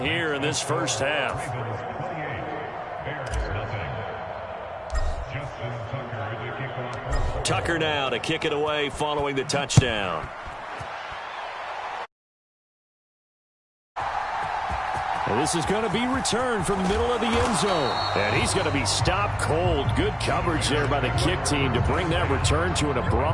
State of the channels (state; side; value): identical; both; correlation 1.00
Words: in this first half. Tucker now to kick it away following the touchdown. And this is going to be returned from the middle of the end zone. And he's going to be stopped cold. Good coverage there by the kick team to bring that return to an